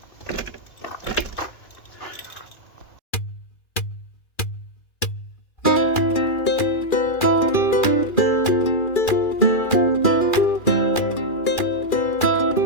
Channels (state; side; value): late; right; 2.4 ms